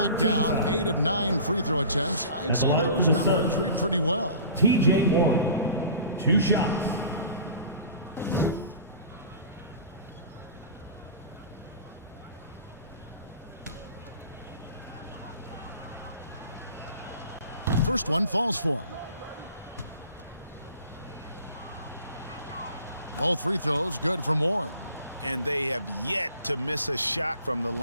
down 8 of 9 free throw attempts. I'd say those numbers read pretty well. T.J. Warren. 2 shots. First one falls for him. Both free throws good from Warren. And they have yet to miss a shot from the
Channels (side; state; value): both; inverted; correlation -0.41